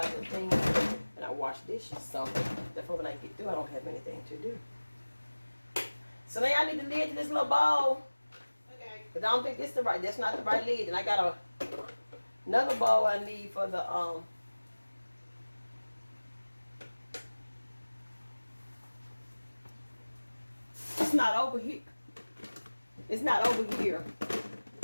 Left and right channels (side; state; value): both; inverted; correlation -1.00